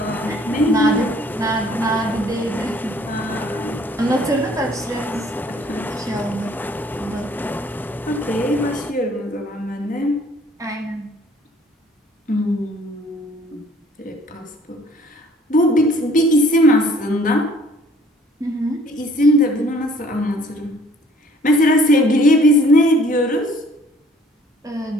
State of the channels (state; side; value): normal; both; correlation 0.57